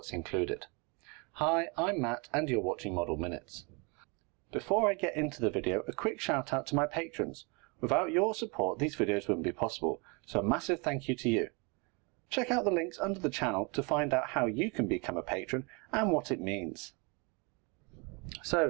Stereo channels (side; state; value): left; quieter; 31.2 dB